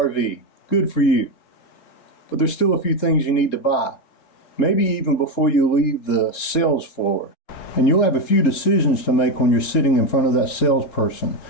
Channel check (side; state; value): right; late; 4.1 ms